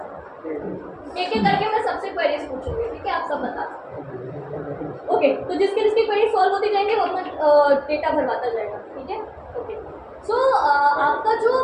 एक एक करके मैं सबसे क्वेरीज पूछूंगी, ठीक है, आप सब बता सकते। ओके, तो जिसकी जिसकी क्वेरी सॉल्व होती जाएंगे वो अपना डेटा भरवाता जाएगा, ठीक है। ओके, सो आपका जो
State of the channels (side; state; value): both; identical; correlation 1.00